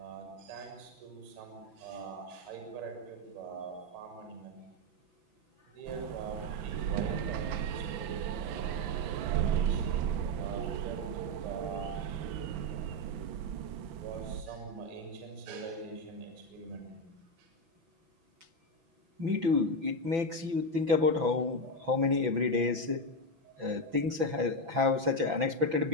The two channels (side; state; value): left; late; 6.0 ms